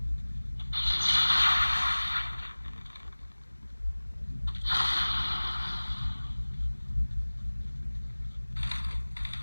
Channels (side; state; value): both; inverted; correlation -1.00